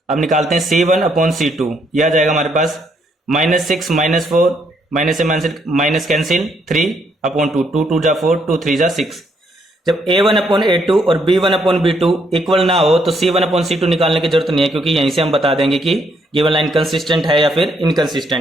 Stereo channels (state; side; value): normal; both; correlation 0.72